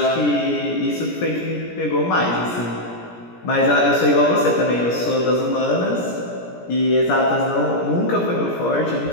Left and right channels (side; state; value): right; late; 17 ms